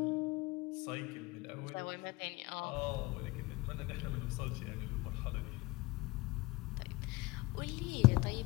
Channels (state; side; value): quieter; right; 21.4 dB